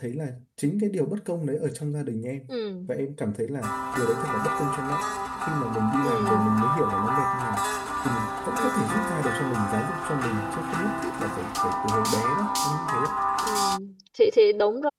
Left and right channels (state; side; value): identical; both; correlation 1.00